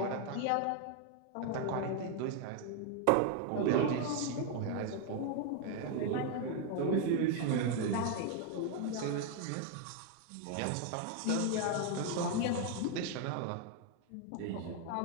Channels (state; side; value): different; both; correlation 0.01